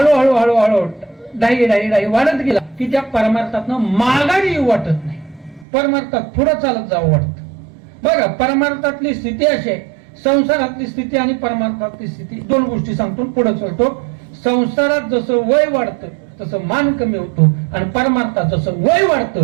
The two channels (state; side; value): drops out; left; at 5.7 s